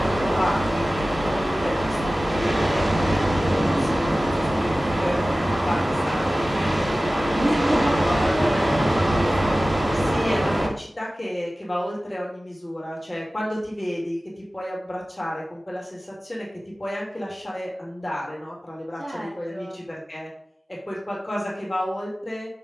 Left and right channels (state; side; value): normal; both; correlation 0.96